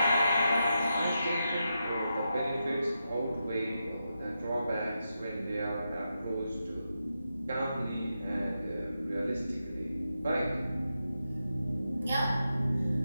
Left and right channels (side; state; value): both; inverted; correlation -0.87